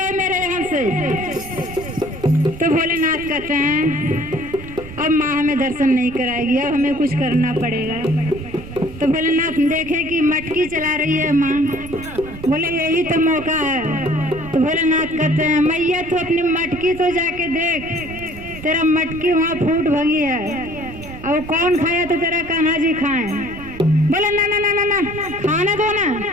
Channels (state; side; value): noise; right; rumble, 15 dB below the sound